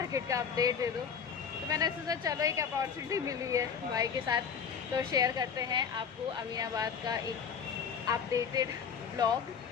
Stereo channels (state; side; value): quieter; right; 6.8 dB